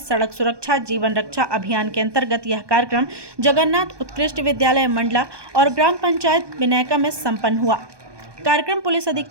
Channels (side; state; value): left; late; 1.2 ms